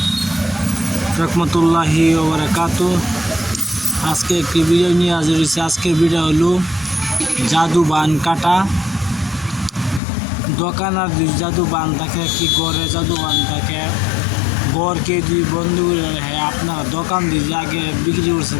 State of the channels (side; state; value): right; drops out; at 10.0 s